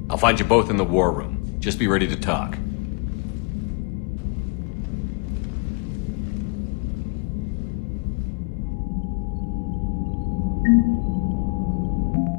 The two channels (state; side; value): quieter; right; 32.4 dB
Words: I'll find you both in the war room. Just be ready to talk.